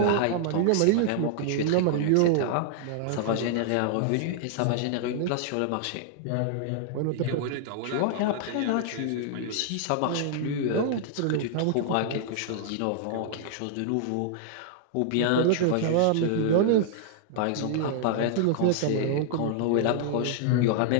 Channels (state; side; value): different; both; correlation -0.01